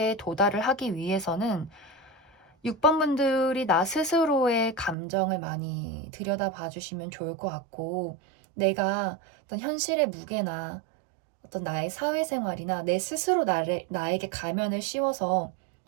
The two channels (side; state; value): left; drops out; at 5.0 s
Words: 도달을 하기 위해서는 6번 분들이 나 스스로의 감정을 많이 들여다봐 주시면 좋을 것 같고, 내가 어떤 현실의 무게나 어떤 나의 사회생활이나 내 스스로 나에게 가면을 씌워서